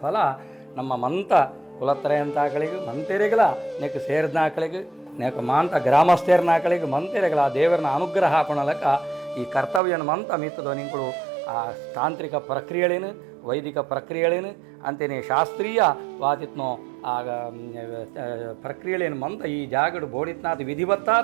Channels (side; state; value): left; drops out; at 9.8 s